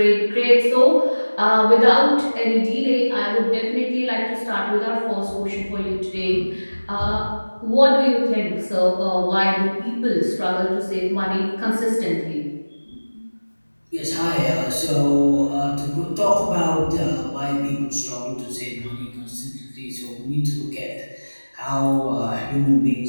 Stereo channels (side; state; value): both; inverted; correlation -1.00